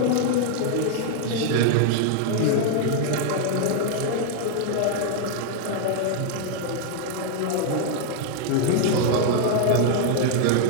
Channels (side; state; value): both; different; correlation 0.00